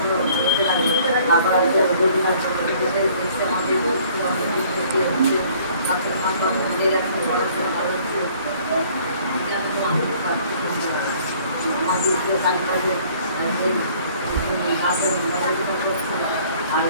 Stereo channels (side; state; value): both; inverted; correlation -0.56